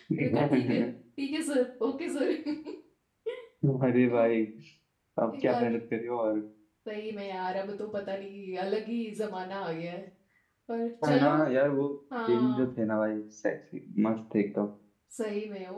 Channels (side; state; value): both; identical; correlation 1.00